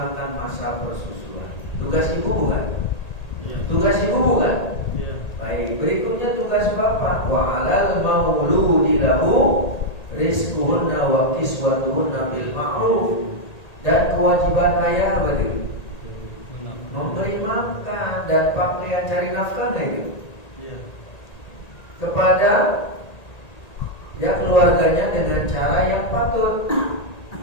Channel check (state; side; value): late; right; 1.8 ms